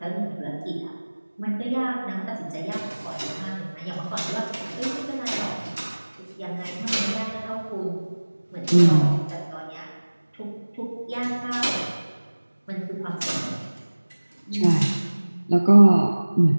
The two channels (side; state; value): both; inverted; correlation -1.00